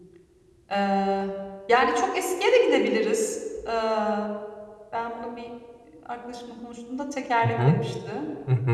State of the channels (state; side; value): identical; both; correlation 1.00